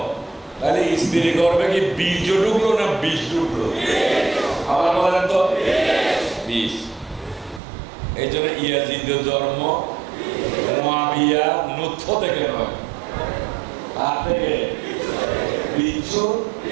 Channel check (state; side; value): drops out; left; at 7.6 s